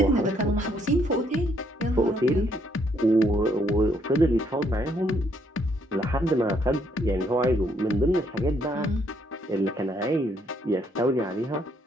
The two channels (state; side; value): normal; both; correlation 0.70